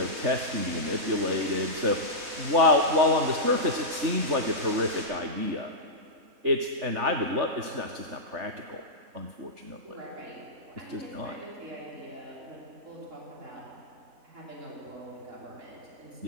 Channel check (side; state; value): left; late; 3.4 ms